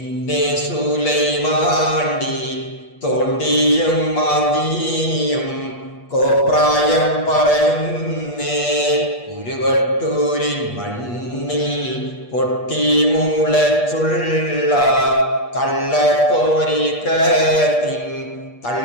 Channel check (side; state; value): right; late; 8.4 ms